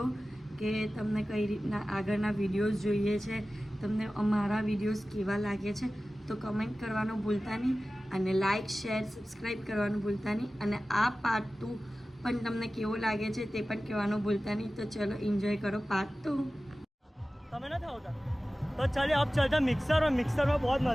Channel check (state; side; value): normal; both; correlation 0.96